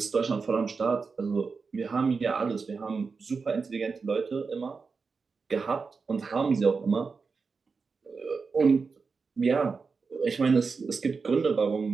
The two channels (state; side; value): quieter; left; 4.8 dB